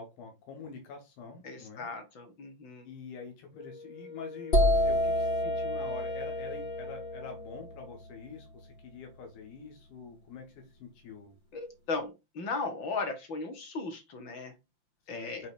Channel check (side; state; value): right; late; 5.8 ms